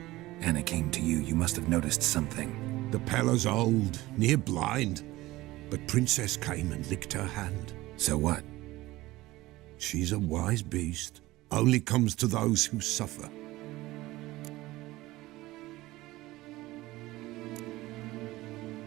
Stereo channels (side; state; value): left; quieter; 18.3 dB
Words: Anna came to you, you must have noticed something. The Pella's old, near blind, but Princess came and licked her hand. So what? She's a wise beast, only comes to those who suffer.